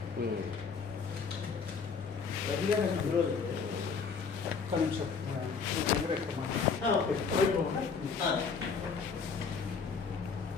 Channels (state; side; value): quieter; right; 5.5 dB